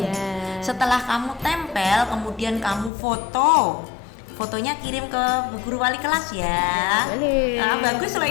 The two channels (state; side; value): drops out; right; at 2.9 s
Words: Ya. Setelah kamu tempel, kemudian kamu foto. Fotonya kirim ke Bu Guru Wali kelas ya. Boleh. Nah, bagus lah